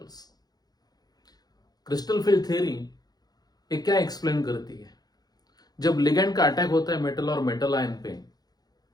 Crystal field theory ये क्या explain करती है? जब ligand का attack होता है metal और metal ion पे,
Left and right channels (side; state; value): right; late; 0.19 ms